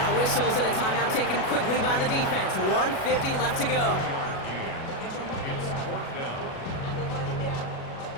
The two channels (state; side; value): late; right; 37 ms